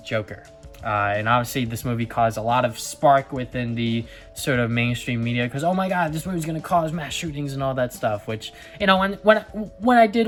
And obviously this movie caused a lot of spark within the sort of mainstream media, because oh my god, this movie's gonna cause mass shootings and all that stuff, which, you know, when I did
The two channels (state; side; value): identical; both; correlation 1.00